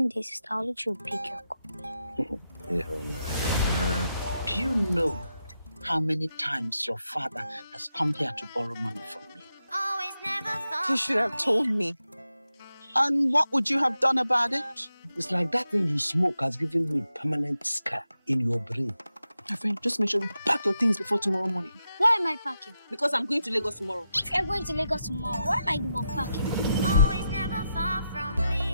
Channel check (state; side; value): inverted; both; correlation -0.87